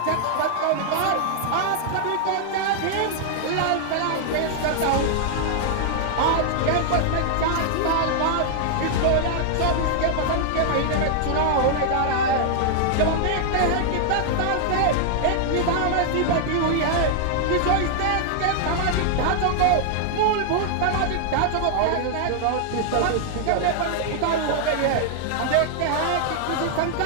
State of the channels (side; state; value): both; different; correlation 0.00